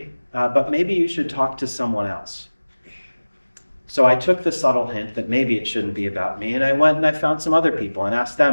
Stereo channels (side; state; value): both; inverted; correlation -1.00